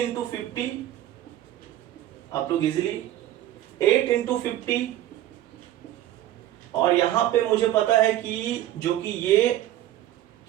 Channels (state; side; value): quieter; left; 13.3 dB